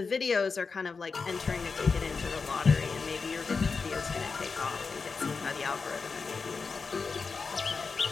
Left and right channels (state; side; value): quieter; right; 4.8 dB